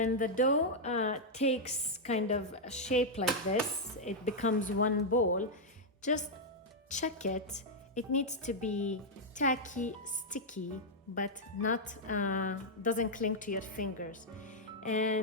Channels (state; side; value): normal; both; correlation -0.04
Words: the dough takes kind of a shape like this, it becomes one ball, just check it. It needs to be tacky, sticky, but not doesn't cling to your fingers.